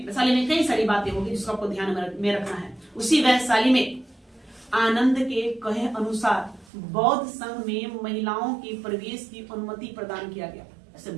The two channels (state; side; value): drops out; left; at 6.7 s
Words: कई सारी बातें होगी जिसको आपको ध्यान में रखना है। उसी वैशाली में आनंद के कहे अनुसार बौद्ध संघ में महिलाओं के प्रवेश की अनुमति प्रदान किया गया। ऐसे